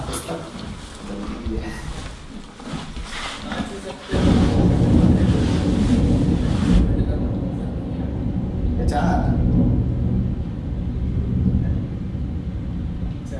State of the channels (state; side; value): identical; both; correlation 1.00